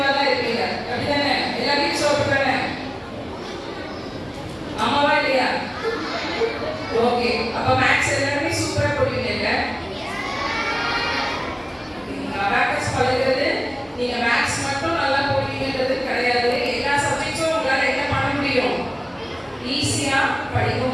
தான் இருப்பீங்க. அப்படிதானே? எல்லா கிட்ஸும் அப்படிதானே? ஆமாவா இல்லையா? ஓகே, அப்ப மேக்ஸ் எல்லாருமே சூப்பரா போடுவீங்க. அபாக்கஸ் பழகிறது நீங்க மேக்ஸ் மட்டும் நல்லா போடுவீங்கன்றது கிடையாது. எல்லா சப்ஜெக்ட்ஸும் உங்களால என்ன பண்ண முடியும்? ஈஸியா படிக்க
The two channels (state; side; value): identical; both; correlation 1.00